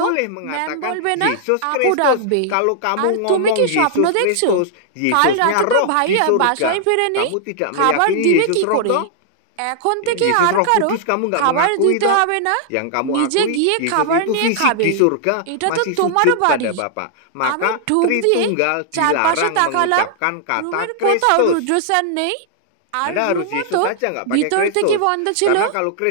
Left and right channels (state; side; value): different; both; correlation -0.01